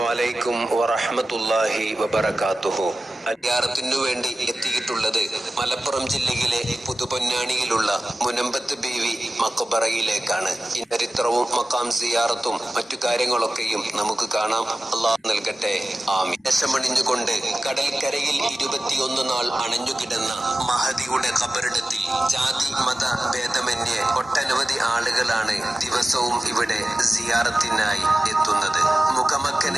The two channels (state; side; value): normal; both; correlation 0.95